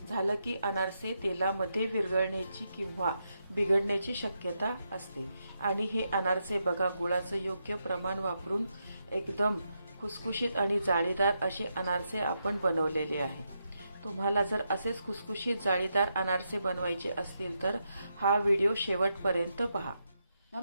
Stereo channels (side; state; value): both; inverted; correlation -0.83